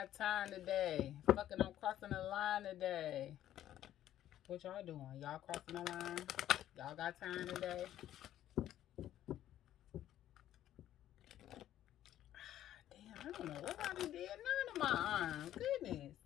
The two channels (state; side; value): quieter; right; 12.2 dB